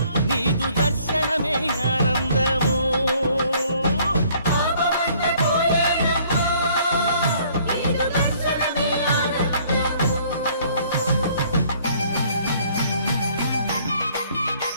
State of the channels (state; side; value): inverted; both; correlation -0.60